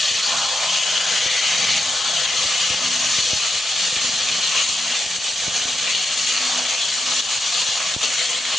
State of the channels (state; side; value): normal; both; correlation 0.85